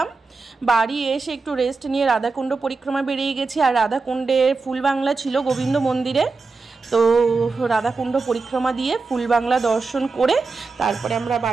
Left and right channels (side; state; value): left; quieter; 4.2 dB